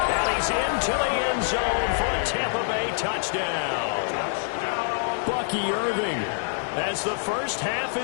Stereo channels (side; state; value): right; silent; 56 dB below the other